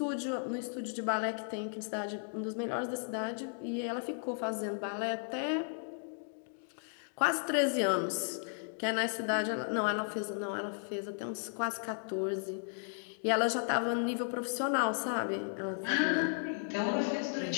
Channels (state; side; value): silent; right; digital silence